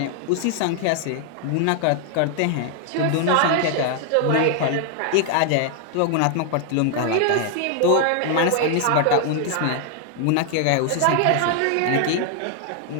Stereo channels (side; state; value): both; different; correlation 0.00